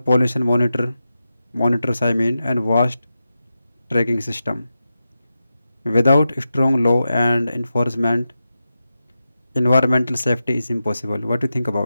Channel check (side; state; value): both; inverted; correlation -0.91